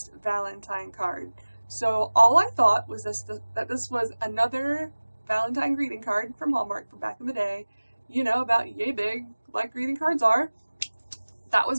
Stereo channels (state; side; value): inverted; both; correlation -1.00